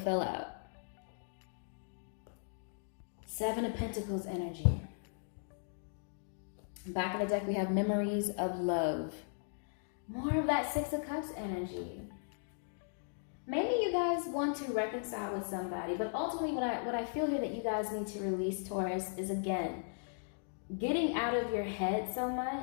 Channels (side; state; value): right; silent; digital silence